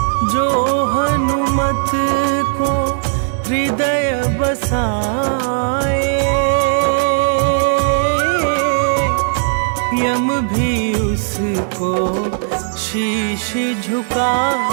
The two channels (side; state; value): left; silent; 68 dB below the other